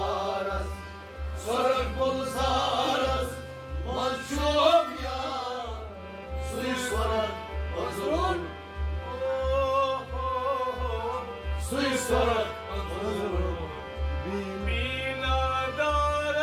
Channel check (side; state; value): both; identical; correlation 1.00